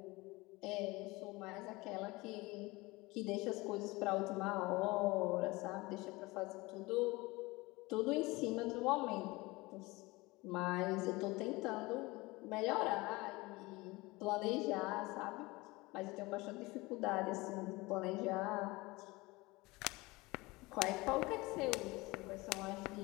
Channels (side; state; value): right; quieter; 22.4 dB